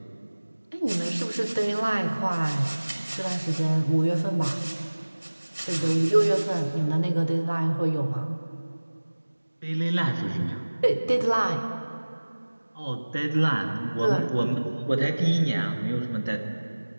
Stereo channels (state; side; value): inverted; both; correlation -1.00